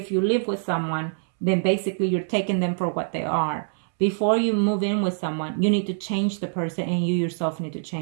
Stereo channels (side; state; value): left; silent; 62 dB below the other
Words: you live with someone, then basically you're taking them for what they are. Before you move in with someone, you need to change the person, and you yourself need to